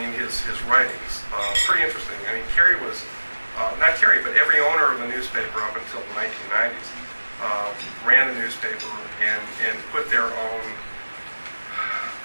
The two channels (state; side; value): inverted; both; correlation -1.00